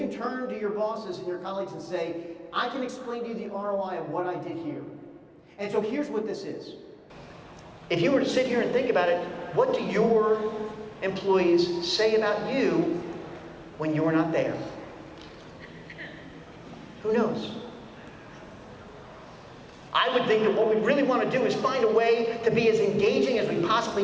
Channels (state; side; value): identical; both; correlation 1.00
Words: turn to your bosses and your colleagues and say, I can explain to you the ROI of what I did here. And so here's what this is. If you were to sit here and think about it, what do your employees say about you when you're not there? Who knows? I would think that what we really want to do is find a way to be as engaging as we possibly